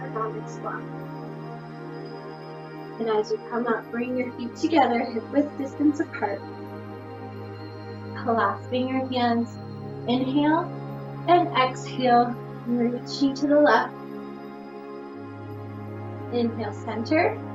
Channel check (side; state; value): both; identical; correlation 1.00